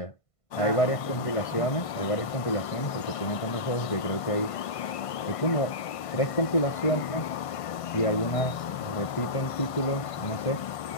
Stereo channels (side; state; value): right; late; 1.5 ms